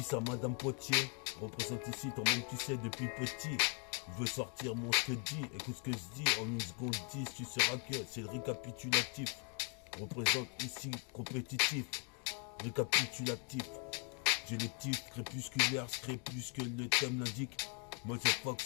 à Madame Potier. Représente ici, toi-même tu sais depuis petit. Je veux sortir mon ce que dit. Écoute ce que je dis en 1 seconde 10. Tu sauras que c'est le récapitulatif. Représente ici compétitif. Récapitulatif. J'ai les titres crépusculaires, crépuscule le thème l'indique. Moi j'ai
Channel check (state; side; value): quieter; right; 39.0 dB